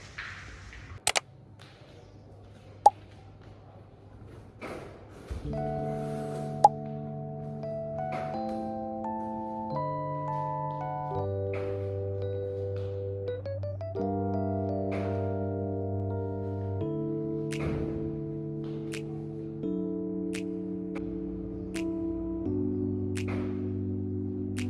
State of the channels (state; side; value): identical; both; correlation 1.00